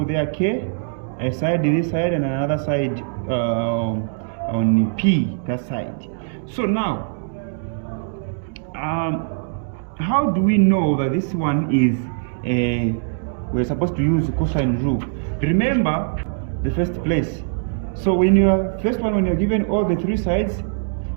there, K, a side this side and another side on P, that side. So now, how do we know that this one is we're supposed to use cosine rule? Remember the first place. So when you're given all the three sides,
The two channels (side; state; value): left; silent; digital silence